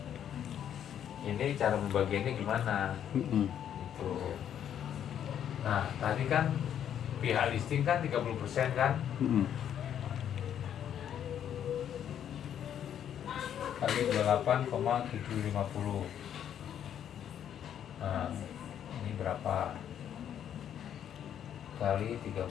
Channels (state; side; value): quieter; right; 9.6 dB